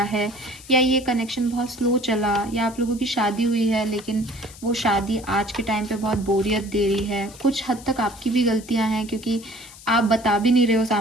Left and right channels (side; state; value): left; noise; hiss, 19 dB below the sound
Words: है, या ये कनेक्शन बहुत स्लो चला, या आप लोगों की शादी हुई है लेकिन वो शादी आज के टाइम पे बहुत बोरियत दे रही है। कुछ हद तक आपकी भी गलतियां हैं, क्योंकि आप बता भी नहीं रहे हो